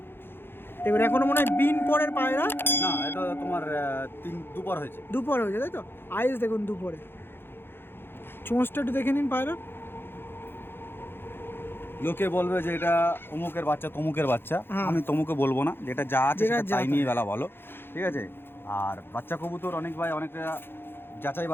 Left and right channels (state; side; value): late; right; 0.10 ms